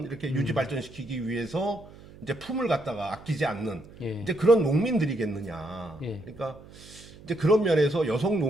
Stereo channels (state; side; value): noise; right; hum, 20 dB below the sound